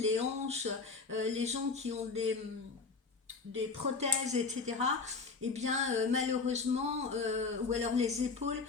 hanches, les gens qui ont des prothèses, etc., eh bien malheureusement, ou alors les épaules,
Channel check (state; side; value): quieter; right; 4.4 dB